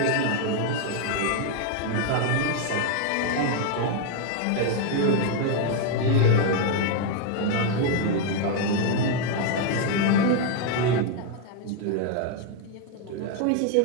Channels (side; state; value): both; different; correlation 0.00